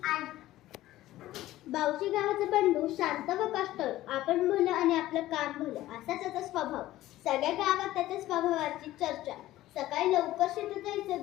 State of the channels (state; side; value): quieter; right; 15.4 dB